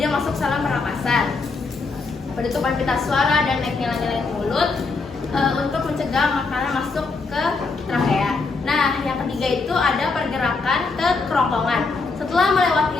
masuk saluran pernapasan. Penutupan pita suara dan naiknya nyalain mulut untuk mencegah makanan masuk ke trakea. Nah, yang ketiga itu ada pergerakan ke kerongkongan. Setelah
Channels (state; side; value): quieter; right; 4.1 dB